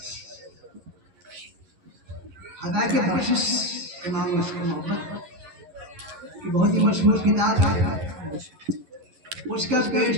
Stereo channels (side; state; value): left; late; 11 ms